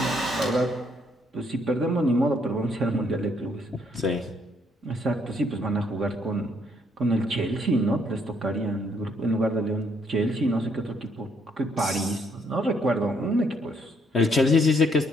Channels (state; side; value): normal; both; correlation 0.70